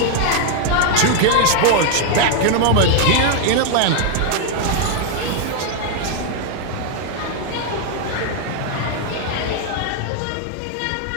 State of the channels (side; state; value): both; different; correlation 0.00